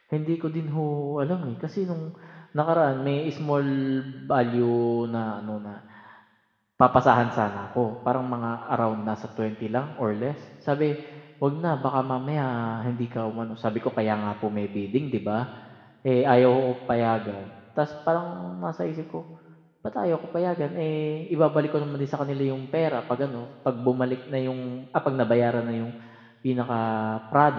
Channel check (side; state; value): both; identical; correlation 1.00